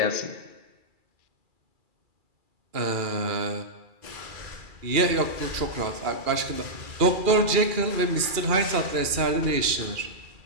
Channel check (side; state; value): left; late; 2.4 ms